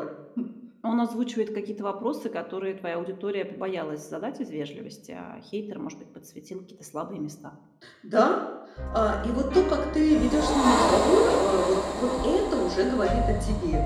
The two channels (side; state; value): both; identical; correlation 1.00